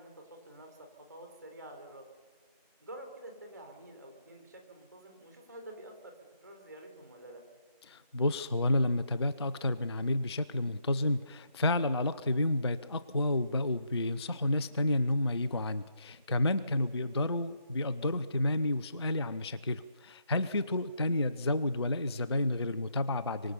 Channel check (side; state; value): both; inverted; correlation -0.76